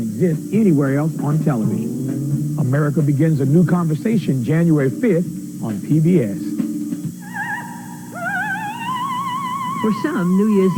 exist anywhere else on television. America begins a new conversation January 5th on PBS. For some, New Year's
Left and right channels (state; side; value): identical; both; correlation 1.00